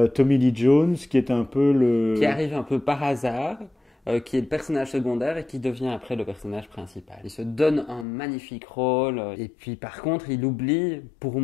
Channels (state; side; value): drops out; right; at 8.1 s